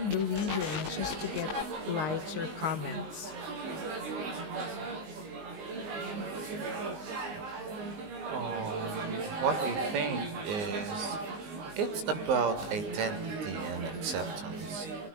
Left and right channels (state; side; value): late; left; 19 ms